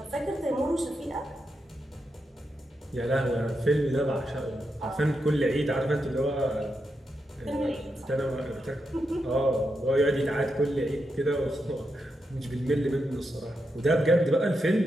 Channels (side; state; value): both; normal; correlation 0.85